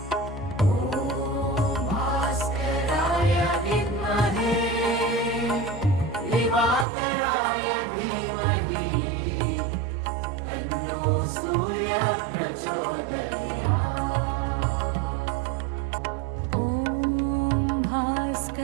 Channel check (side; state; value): left; drops out; at 6.9 s